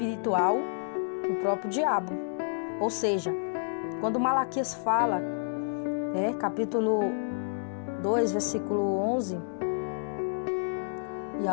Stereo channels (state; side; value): silent; right; 58 dB below the other